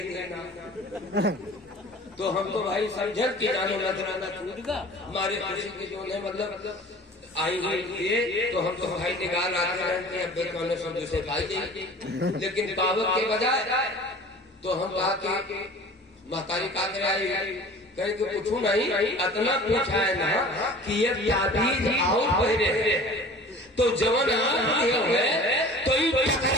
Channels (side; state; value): both; normal; correlation 0.44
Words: दिया ना। तो हम तो भाई समझे कि जानो नजराना टूटेगा हमारे खुशी के जो है मतलब आई ये तो हम तो भाई निकाल आते रहते हैं अब कौन सब दूसरे खाई जाएगी। लेकिन पावक के बजाय तो हम कहा कि महतारी का आई कहीं कि पूछू नहीं, इतना पूछा है ना कि ये ताबीज और पहले तो जवन है तो